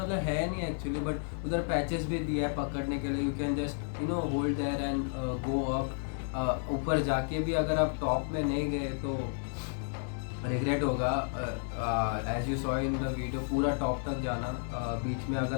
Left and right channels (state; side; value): silent; right; 56 dB below the other